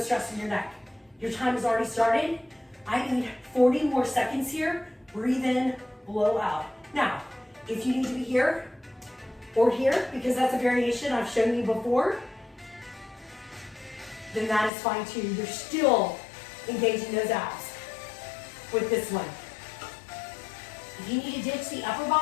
in your neck. Your time has already started. I need 40 more seconds here. Breathe in, blow out. Now, if you need to be here or here, because that's a variation I've shown you before, then that is fine too. You're still engaging those abs with this one. If you need to ditch the upper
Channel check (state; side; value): drops out; right; at 14.7 s